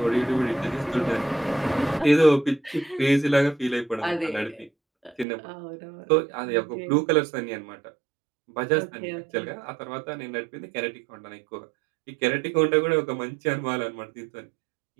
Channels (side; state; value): left; drops out; at 5.2 s